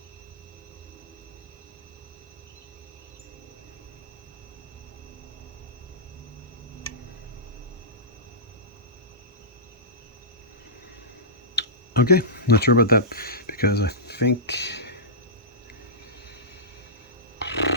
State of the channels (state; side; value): normal; both; correlation -0.19